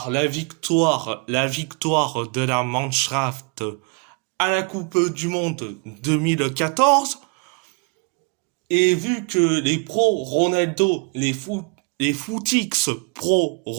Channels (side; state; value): left; quieter; 31.5 dB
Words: la victoire de la Mannschaft à la Coupe du Monde 2014, et vu que les pro Ronaldo, les footix pro